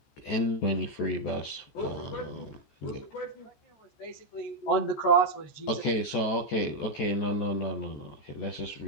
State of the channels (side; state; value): right; late; 14 ms